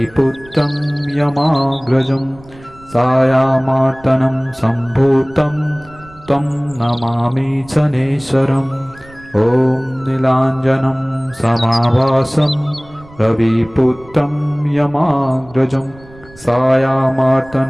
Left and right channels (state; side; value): noise; right; rumble, 23 dB below the sound